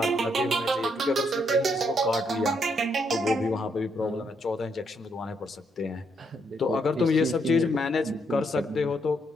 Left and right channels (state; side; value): normal; both; correlation 0.75